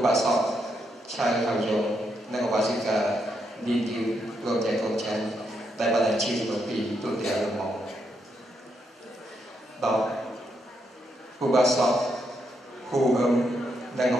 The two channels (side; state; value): both; normal; correlation 0.79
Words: បាសកឆៅហៅយងនិងឧបាសិកាឌីឌីព្រមទាំងកូនចៅដែលបានជឿមកពីទូទាំងមក10ឧបាសកហ៊ូអឹមនិងឧ